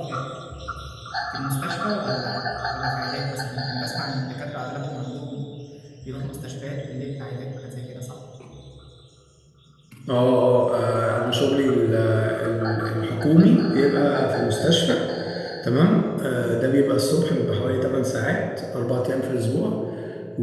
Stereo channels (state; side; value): identical; both; correlation 1.00